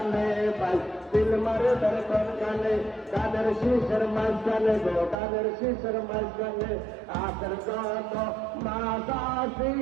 ভাই দিল মারে বের কোন গানে দানের শিশির মাঝখানে গো দানের শিশির মাঝখানে আদর যত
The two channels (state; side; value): drops out; left; at 5.2 s